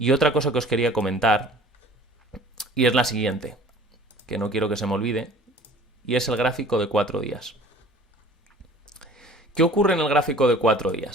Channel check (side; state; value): both; normal; correlation 0.47